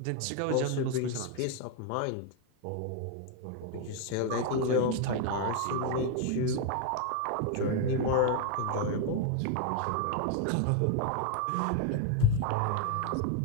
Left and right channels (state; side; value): different; both; correlation 0.01